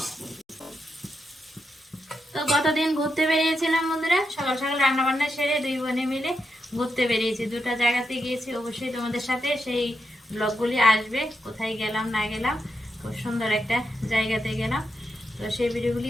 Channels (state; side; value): normal; both; correlation 0.85